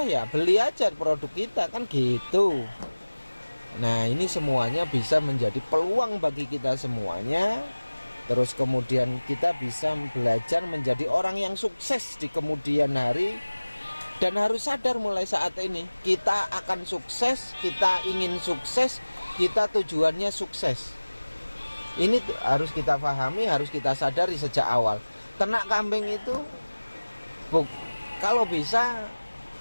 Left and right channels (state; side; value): inverted; both; correlation -1.00